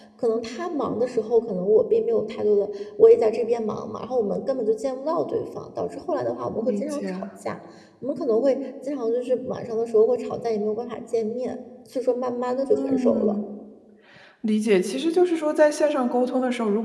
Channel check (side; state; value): both; identical; correlation 1.00